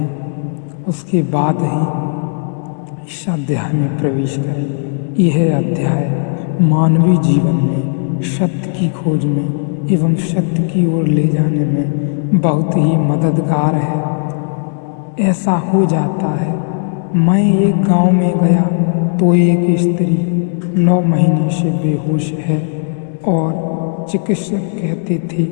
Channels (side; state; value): right; silent; digital silence